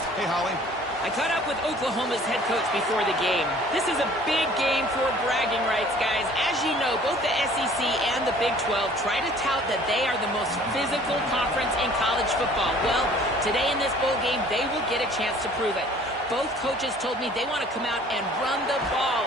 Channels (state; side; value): normal; both; correlation 0.52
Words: Hey, Holly. I caught up with Oklahoma's head coach before the game. This is a big game for bragging rights, guys. As you know, both the SEC and the Big 12 try to tout that they are the most physical conference in college football. Well, today in this bowl game, they will get a chance to prove it. Both coaches told me they want to come out and run the